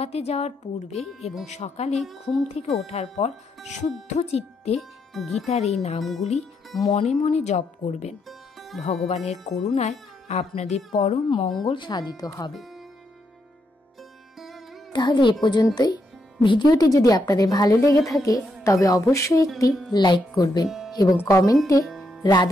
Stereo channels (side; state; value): both; normal; correlation 0.79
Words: যাওয়ার পূর্বে এবং সকালে ঘুম থেকে ওঠার পর শুদ্ধ চিত্তে গীতার এই নামগুলি মনে মনে জপ করবেন। ভগবানের করুণায় আপনাদের পরম মঙ্গল সাধিত হবে। তাহলে এ পর্যন্তই। ভিডিওটি যদি আপনাদের ভালো লেগে থাকে তবে অবশ্যই একটি লাইক করবেন এবং কমেন্টে